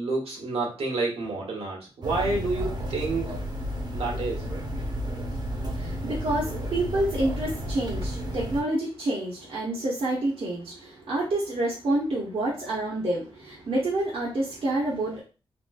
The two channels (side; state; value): both; normal; correlation 0.73